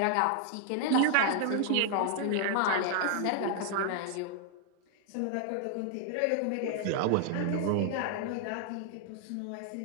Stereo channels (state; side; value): different; both; correlation 0.00